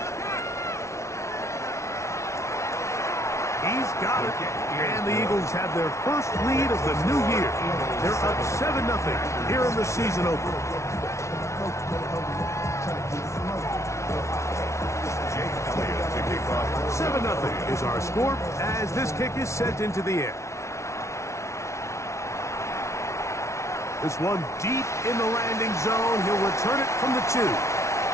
He's got it. And the Eagles have their 1st lead of the new year. They're up 7-0 here in the season opener. 7-0 is our score as this kick is sent into the air. This one deep in the landing zone. He'll return it from the 2.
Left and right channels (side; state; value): right; late; 0.14 ms